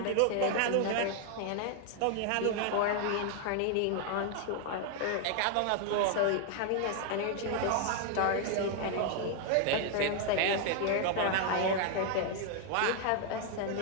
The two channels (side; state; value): both; different; correlation 0.00